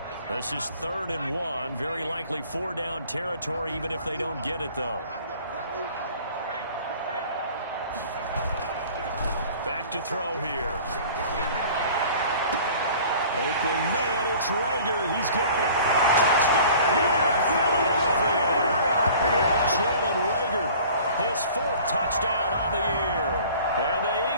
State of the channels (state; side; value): inverted; both; correlation -0.47